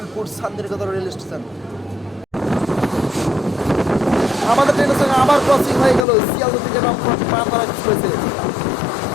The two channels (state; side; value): drops out; right; at 6.1 s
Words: শান্তিনিকেতন রেল স্টেশন। আমাদের ট্রেনের সঙ্গে আবার ক্রসিং হয়ে গেল শিয়ালদা থেকে রামপুরহাট মালদা এক্সপ্রেসে।